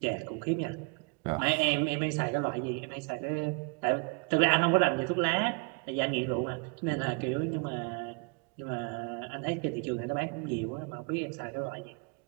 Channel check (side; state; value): left; quieter; 31.8 dB